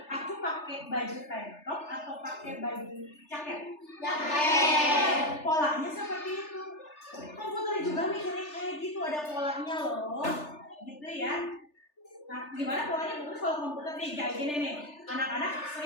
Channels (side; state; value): right; late; 3.3 ms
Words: Aku pakai baju tank top atau pakai baju jaket? Polanya seperti itu. Komputer juga mikirnya kayak gitu, ada polanya loh, gitu ya. Nah, gimana polanya bagus kalau komputer nih kayak gini nih. Anak-anak